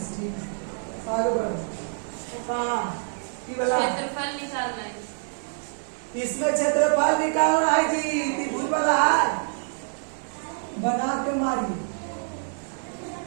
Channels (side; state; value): left; silent; digital silence